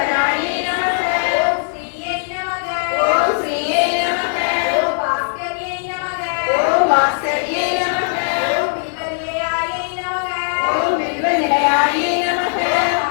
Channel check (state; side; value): silent; right; digital silence